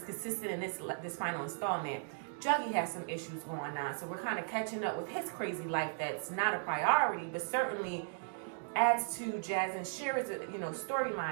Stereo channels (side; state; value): left; silent; digital silence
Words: consistent in this final installment. Juggy has some issues going on, so we're kind of catching up with his crazy life that's not a priority, but certainly adds to Jazz and Shira's, you know,